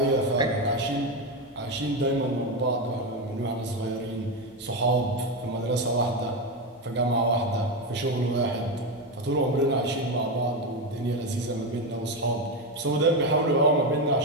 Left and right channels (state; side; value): normal; both; correlation 0.12